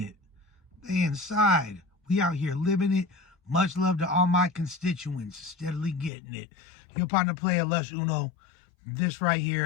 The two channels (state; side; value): drops out; right; at 6.1 s